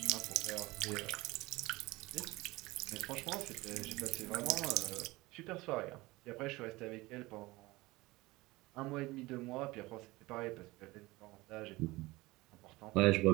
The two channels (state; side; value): quieter; left; 20.8 dB